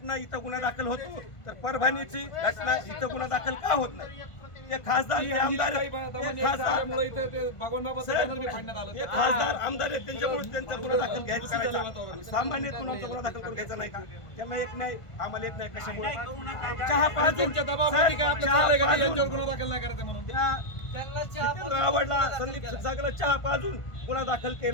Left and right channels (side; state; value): right; late; 1.5 ms